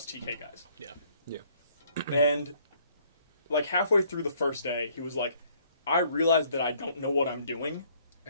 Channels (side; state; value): both; inverted; correlation -0.63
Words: TK guys. Yeah. And, like, halfway through the first day, he was like, I realized that I don't know what I'm doing,